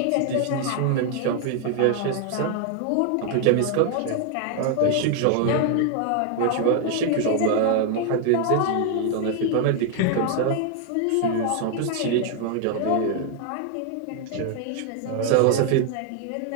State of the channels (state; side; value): different; both; correlation 0.00